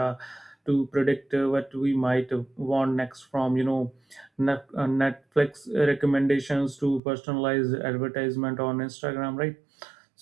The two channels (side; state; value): left; drops out; at 7.0 s